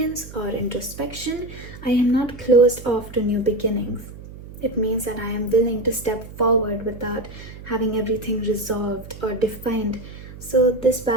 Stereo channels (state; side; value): noise; right; hum, 15 dB below the sound